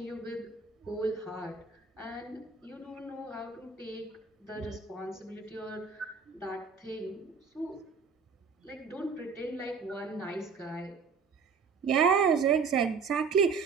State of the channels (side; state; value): left; quieter; 5.3 dB